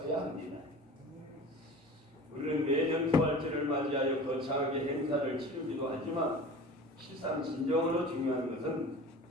합니다. 우리는 매년 부활절을 맞이하여 거창하게 행사를 치르기도 하지만 실상 진정으로 중요한 것은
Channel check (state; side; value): normal; both; correlation 0.38